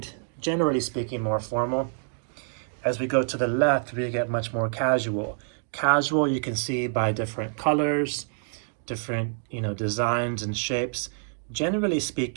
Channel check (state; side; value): silent; left; digital silence